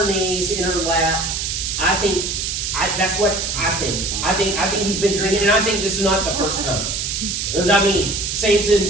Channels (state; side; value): noise; right; hiss, 2 dB below the sound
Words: knees, in her lap. That's what I think. I think he's been drinking, and I think this is not the first time. Because